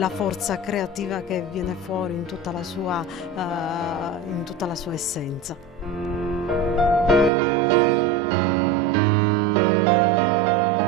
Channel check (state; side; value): drops out; left; at 7.3 s